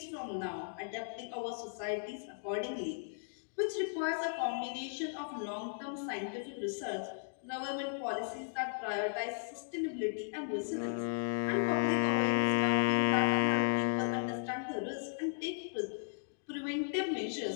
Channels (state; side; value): silent; right; digital silence